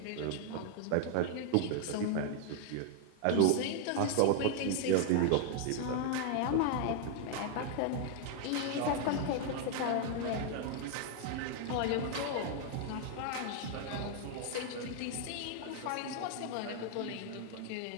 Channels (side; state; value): both; different; correlation 0.00